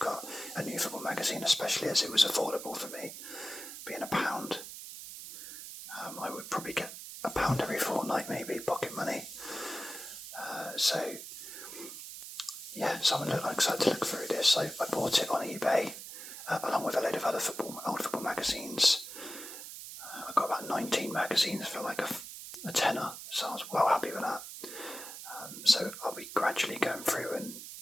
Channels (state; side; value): noise; right; hiss, 11 dB below the sound